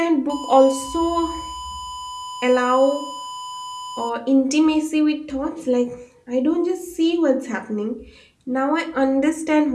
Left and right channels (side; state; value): both; identical; correlation 1.00